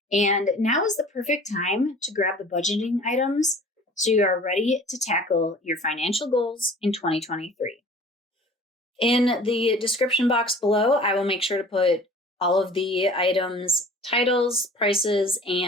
And now is the perfect time to grab the budgeting items so you are ready to tackle your financial goals in 2023. In the description box below, I will make sure to put all of the items, titles, prices,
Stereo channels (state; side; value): normal; both; correlation 0.46